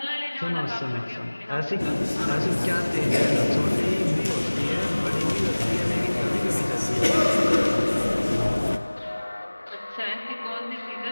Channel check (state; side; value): inverted; both; correlation -1.00